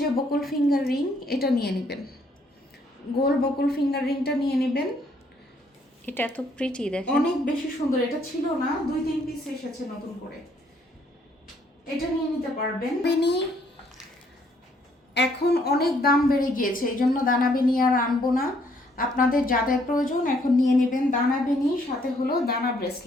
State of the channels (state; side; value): normal; both; correlation 0.67